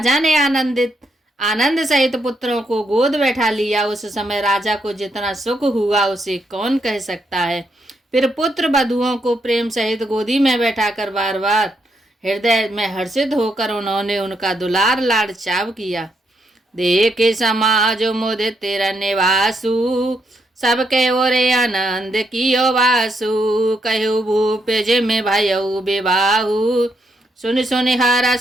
ने आनंद सहित पुत्रों को गोद बैठा लिया। उस समय राजा को जितना सुख हुआ उसे कौन कह सकता है। फिर पुत्र बधुओं को प्रेम सहित गोदी में बैठाकर बार बार हृदय में हर्षित होकर उन्होंने उनका दुलार लाड चाव किया। देखे समाज मुदित तेरा निवासु, सबके ओरे आनंद कियो वासु। कहु भूप जिम भयउ विवाहु, सुन सुन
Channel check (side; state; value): both; normal; correlation 0.78